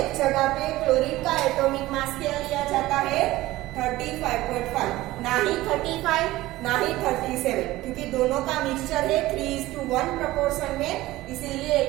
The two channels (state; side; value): quieter; left; 17.4 dB